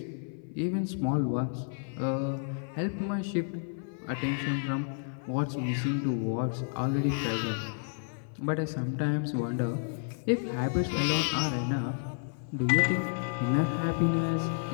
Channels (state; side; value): silent; right; 57 dB below the other